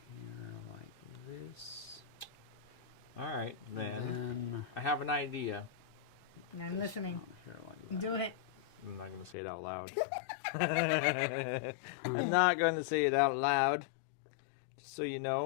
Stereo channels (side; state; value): right; drops out; at 9.3 s